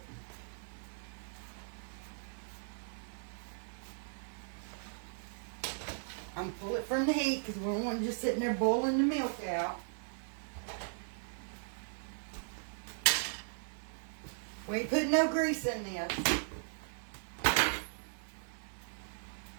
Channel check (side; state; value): left; silent; 53 dB below the other